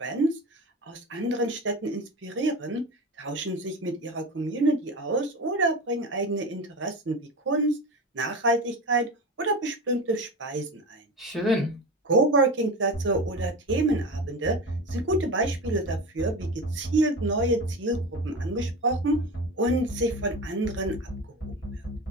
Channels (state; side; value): normal; both; correlation 0.28